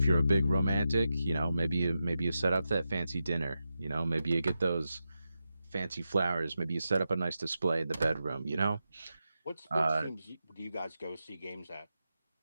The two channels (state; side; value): inverted; both; correlation -0.89